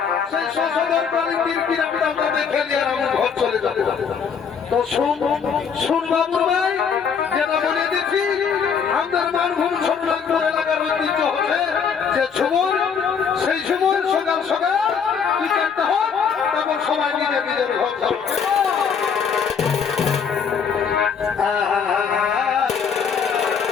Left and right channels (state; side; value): quieter; right; 6.6 dB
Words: সেই শশধর কালিন্দির কিরাম ডালটা দেখে নিয়ে আমি ঘর চলে যাবো তো শুন বাবুর ভাই যেটা বলে দিচ্ছি আমাদের মানভূম ছোট নাগপুর এলাকার ঐতিহ্য হচ্ছে যে ঝুমুর সেই ঝুমুর সকাল বিকেলটা হোক তারপর সবাই নিজের ঘর যাবে